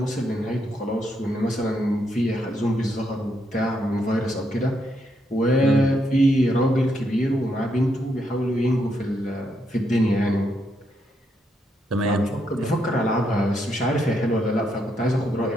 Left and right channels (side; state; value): both; normal; correlation 0.78